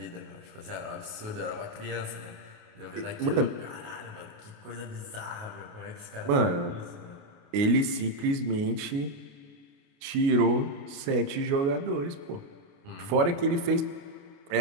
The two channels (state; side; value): late; left; 29 ms